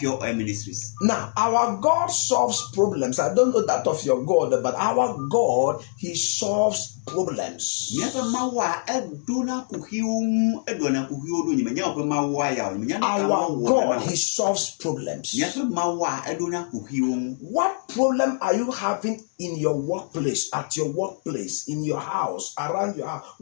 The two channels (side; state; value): right; silent; 56 dB below the other